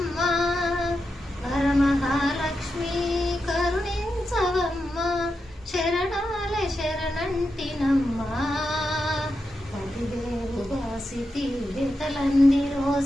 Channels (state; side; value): normal; both; correlation 0.88